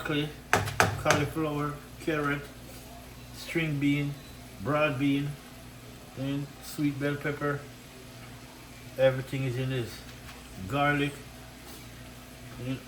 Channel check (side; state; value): both; identical; correlation 1.00